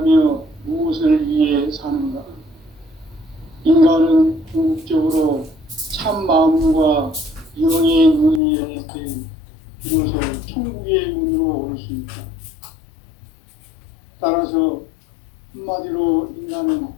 무엇을 위해 사는가? 인간은 궁극적으로 참 마음과 영의 눈이 열릴 때 비로소 천국의 문으로 올 수 있다. 따라서 한마디로 인간은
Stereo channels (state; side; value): drops out; right; at 8.4 s